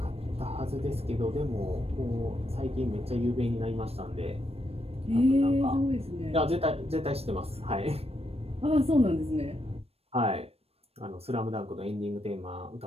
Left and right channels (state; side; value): late; left; 0.29 ms